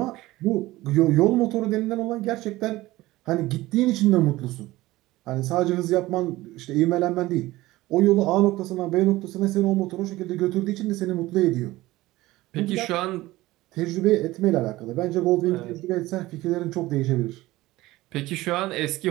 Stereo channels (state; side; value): quieter; left; 18.1 dB